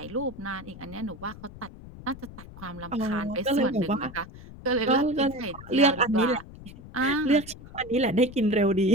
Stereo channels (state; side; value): noise; left; rumble, 16 dB below the sound